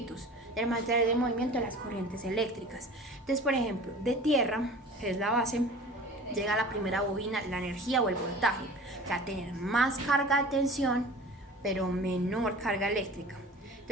del movimiento de las corrientes eléctricas. Entonces, por ejemplo, de tierra, que es la base, llega a la primera bobina la energía o el voltaje, que va a tener más carga de tensión, pero menor carga eléctrica.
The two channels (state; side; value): normal; both; correlation 0.41